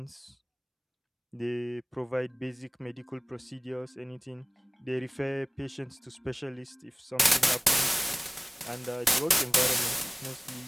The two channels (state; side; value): identical; both; correlation 1.00